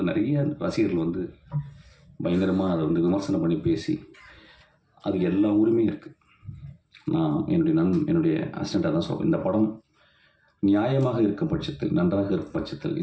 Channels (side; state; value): both; identical; correlation 1.00